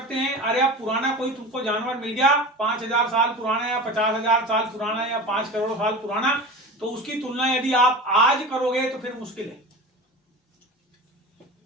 हैं। अरे अब पुराना कोई तुमको जानवर मिल गया 5000 साल पुराना या 50,000 साल पुराना या 5 करोड़ साल पुराना, तो उसकी तुलना यदि आप आज करोगे तो फिर मुश्किल है।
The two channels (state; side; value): normal; both; correlation 0.32